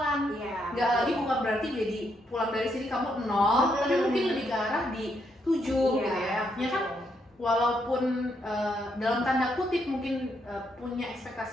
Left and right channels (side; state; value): both; normal; correlation 0.77